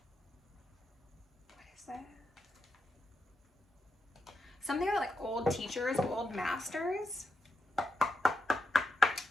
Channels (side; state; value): both; normal; correlation 0.85